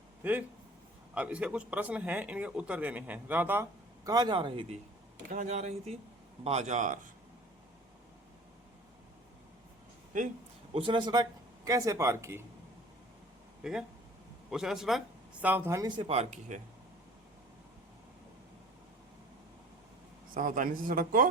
ठीक, अब इसके कुछ प्रश्न हैं, इनके उत्तर देने हैं। राधा कहाँ जा रही थी? कहाँ जा रही थी? बाजार। ठीक, उसने सड़क कैसे पार की? ठीक है, उसने सड़क सावधानी से पार की है, सावधानी से सड़क को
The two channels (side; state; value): both; normal; correlation 0.46